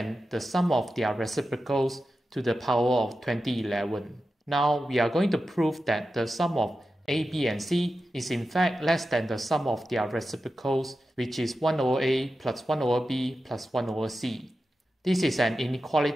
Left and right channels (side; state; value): both; normal; correlation 0.92